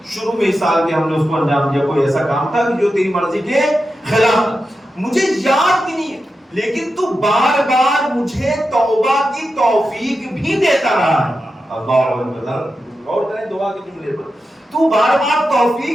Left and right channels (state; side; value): normal; both; correlation 0.90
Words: شروع میں اس سال کے ہم نے اس کو انجام دیا، کوئی ایسا کام تھا جو تیری مرضی کے خلاف، مجھے یاد بھی نہیں ہے، لیکن تو بار بار مجھے توبہ کی توفیق بھی دیتا رہا ہے۔ اللہ اکبر، غور کریں دعا کے جملے پر، تو بار بار